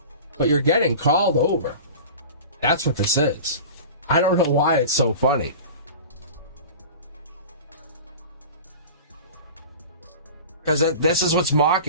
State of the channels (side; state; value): both; inverted; correlation -0.35